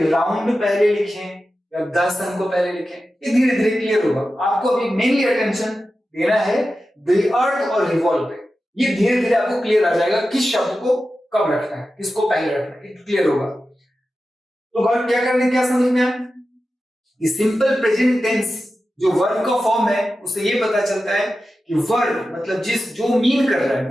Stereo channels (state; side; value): normal; both; correlation 0.92